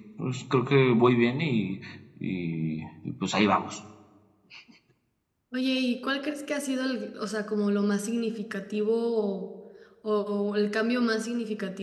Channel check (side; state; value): both; identical; correlation 1.00